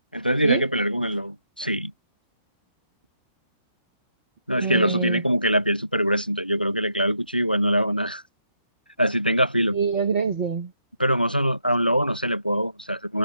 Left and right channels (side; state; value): both; inverted; correlation -0.77